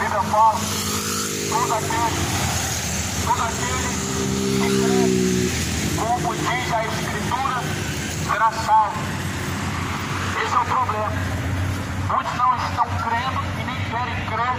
fala: todo aquele que crê, como diz a Escritura, será salvo. Esse é o problema. Muitos não estão crendo e nem querem crer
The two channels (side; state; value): both; identical; correlation 1.00